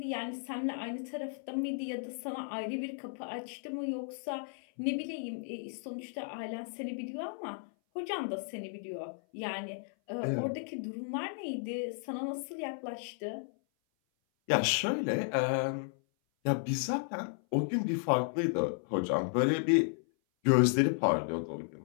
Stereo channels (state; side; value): silent; right; 55 dB below the other